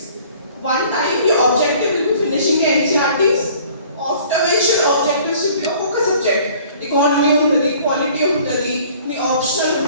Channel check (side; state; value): both; inverted; correlation -0.53